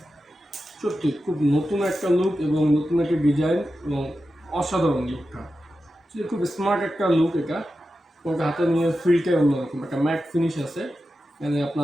সত্যি খুব নতুন একটা লুক এবং নতুন একটা ডিজাইন এবং অসাধারণ লুকটা। খুব স্মার্ট একটা লুক এটা। ওটা হাতে নিয়ে ফিলটাই অন্যরকম, একটা ম্যাট ফিনিশ আছে, মানে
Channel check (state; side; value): normal; both; correlation 0.91